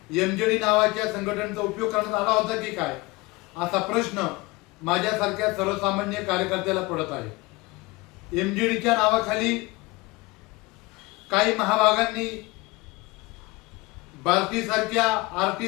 MGD नावाच्या संघटनेचा उपयोग करण्यात आला होता की काय, असा प्रश्न माझ्यासारख्या सर्वसामान्य कार्यकर्त्याला पडत आहे. MGDच्या नावाखाली काही महाभागांनी भारती सारख्या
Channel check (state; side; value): quieter; right; 22.5 dB